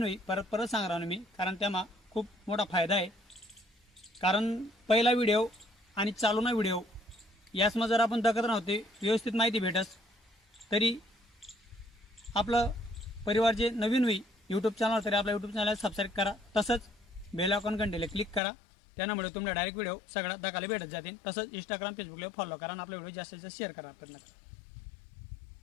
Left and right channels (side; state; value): right; drops out; at 18.4 s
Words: होई परत परत सांगणार मी, कारण त्यामा खूप मोठा फायदा आहे. कारण पहिला व्हिडिओ आणि चालूना व्हिडिओ यासमा जर आपण दखत नव्हते व्यवस्थित माहिती भेटस, तरी आपलं परिवार जे नवीन होई यूट्यूब चॅनल तरी आपल्या यूट्यूब चॅनल सबस्क्राईब करा. तसंच बेल आयकॉन घंटेला क्लिक करा. त्यामुळे तुम्हाला डायरेक्ट व्हिडिओ सगळ्यात दाखवायला भेटत जातील. तसंच इंस्टाग्राम फेसबुकला फॉलो करा आणि आपला व्हिडिओ जास्तीत जास्त शेअर करा.